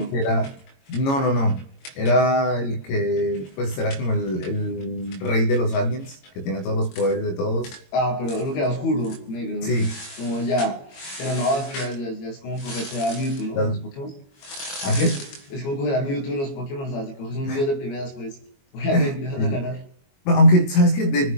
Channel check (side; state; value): right; late; 22 ms